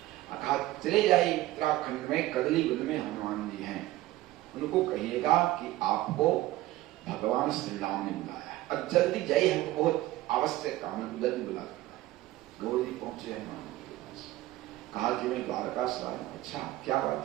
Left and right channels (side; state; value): left; quieter; 16.6 dB